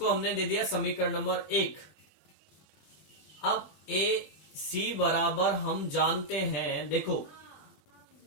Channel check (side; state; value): right; late; 21 ms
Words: हमने दे दिया समीकरण नंबर 1। अब AC बराबर हम जानते हैं, देखो